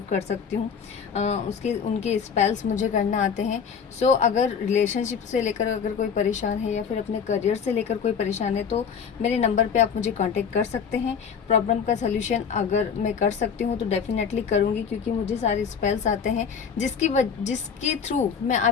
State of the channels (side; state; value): right; quieter; 6.7 dB